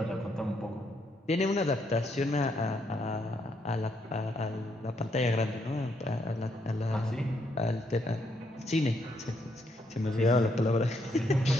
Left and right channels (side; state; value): both; normal; correlation 0.75